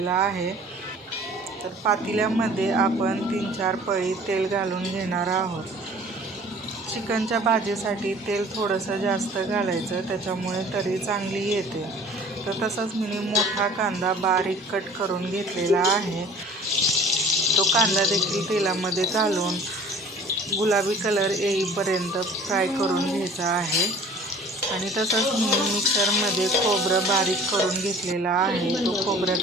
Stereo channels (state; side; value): normal; both; correlation 0.47